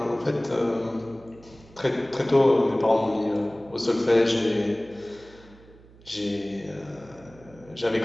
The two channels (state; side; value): noise; right; hum, 24 dB below the sound